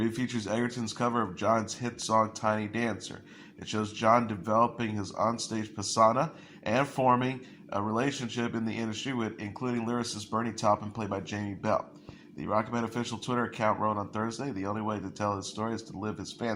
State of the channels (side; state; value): both; identical; correlation 1.00